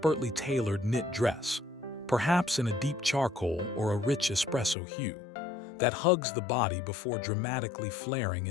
tailored knit dress, perhaps in a deep charcoal or a rich espresso hue, that hugs the body before dramatically flaring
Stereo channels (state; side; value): drops out; right; at 4.8 s